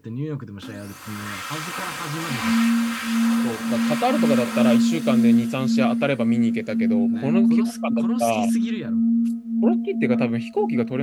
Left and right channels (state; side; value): identical; both; correlation 1.00